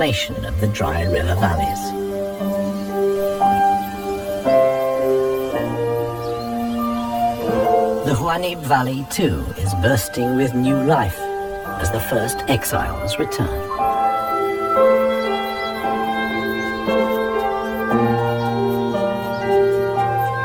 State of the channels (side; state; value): both; identical; correlation 1.00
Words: of the dry river valleys. The Huanib Valley, too, is bursting with new life as the first exiles return.